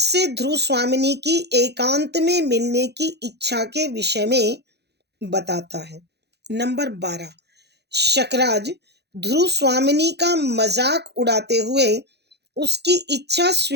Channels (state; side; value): late; left; 0.48 ms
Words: ध्रुव स्वामिनी की एकांत में मिलने की इच्छा के विषय में बताता है। नंबर 12, शकराज ध्रुव स्वामिनी का मजाक उड़ाते हुए उसकी इच्छा